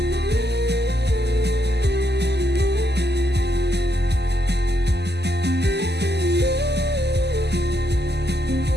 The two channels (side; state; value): left; late; 0.49 ms